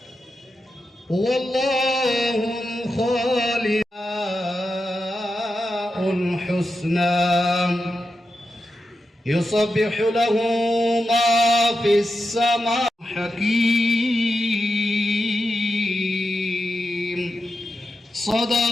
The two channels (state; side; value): normal; both; correlation 0.88